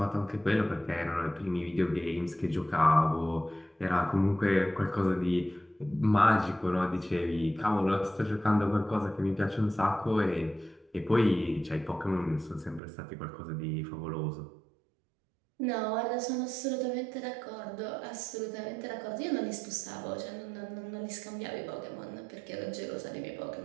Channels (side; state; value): left; drops out; at 12.8 s